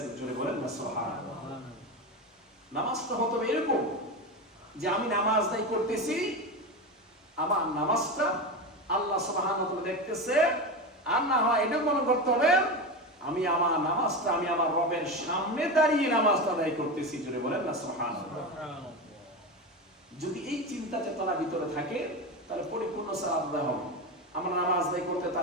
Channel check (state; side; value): normal; both; correlation 0.20